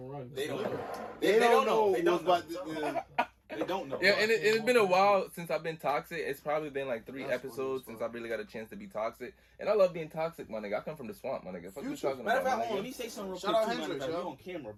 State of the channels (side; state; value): both; identical; correlation 1.00